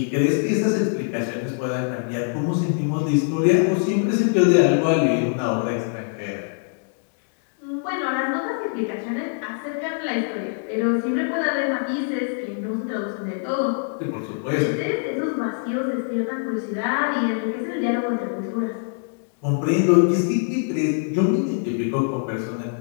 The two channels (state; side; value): silent; right; 63 dB below the other